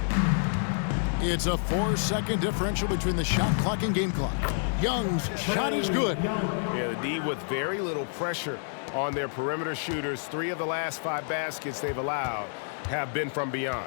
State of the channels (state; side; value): silent; right; digital silence